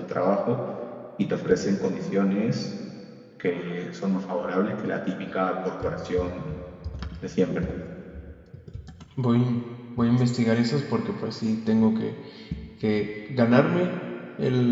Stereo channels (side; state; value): both; identical; correlation 1.00